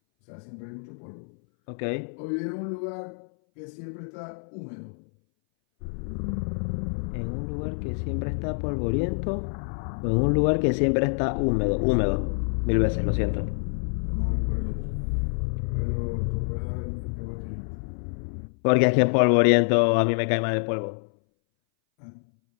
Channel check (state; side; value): silent; right; 60 dB below the other